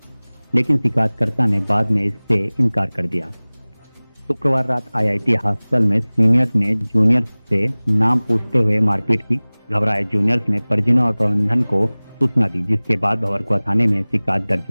लेकिन शिकायतकर्ता ने बाद में इससे इनकार कर दिया। शुक्रवार रात आईआईटी हॉस्टल में सीनियर्स ने जूनियर्स से नाम पूछते हुए मारपीट की। घबराए जूनियर्स ने परिजनों और प्रबंधन को सूचना दी, जिसके बाद भंवरकुआ थाने में शिकायत दर्ज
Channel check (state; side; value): inverted; both; correlation -1.00